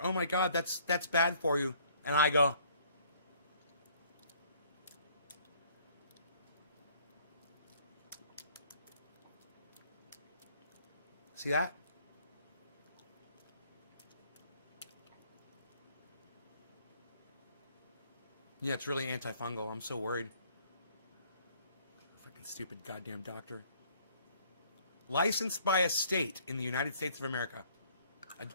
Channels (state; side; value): inverted; both; correlation -0.60